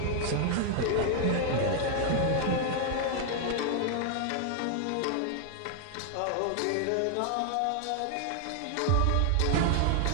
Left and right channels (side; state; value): both; different; correlation 0.00